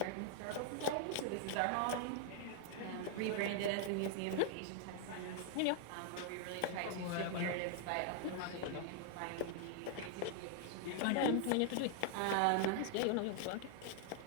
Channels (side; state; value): both; different; correlation 0.00